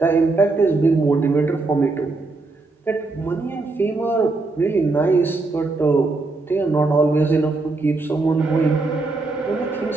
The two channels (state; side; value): quieter; left; 3.5 dB